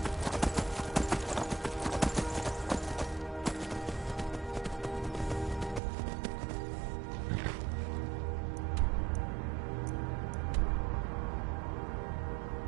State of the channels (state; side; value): drops out; left; at 5.8 s